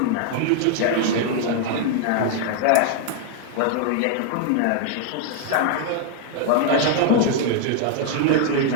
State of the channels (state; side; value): different; both; correlation 0.00